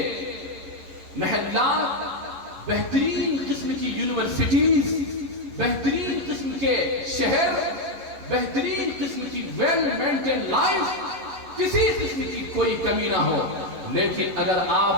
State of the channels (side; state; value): left; late; 11 ms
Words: محلات، بہترین قسم کی یونیورسٹیز، بہترین قسم کے شہر، بہترین قسم کی ویل مینٹین لائف، کسی قسم کی کوئی کمی نہ ہو، لیکن اگر